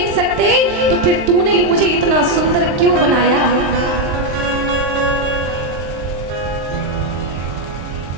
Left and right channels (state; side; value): late; left; 23 ms